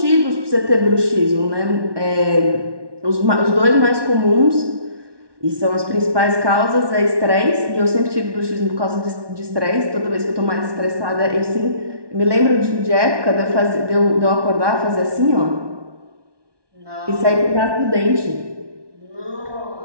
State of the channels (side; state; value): left; late; 1.2 ms